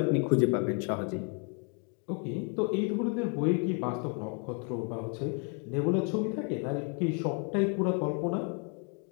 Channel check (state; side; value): quieter; right; 39.4 dB